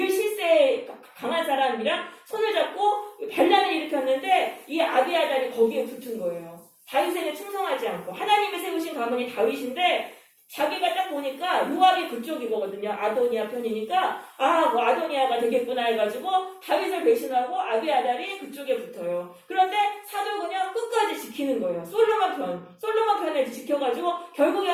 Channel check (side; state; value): both; identical; correlation 1.00